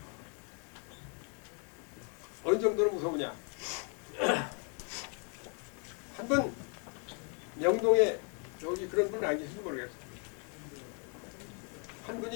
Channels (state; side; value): quieter; right; 38.9 dB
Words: 어느 정도로 무서우냐? 한번 명동에 여기 그런 분은 안 계신지 모르겠어요. 한